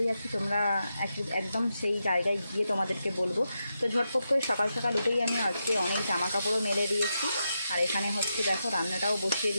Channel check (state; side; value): inverted; both; correlation -0.86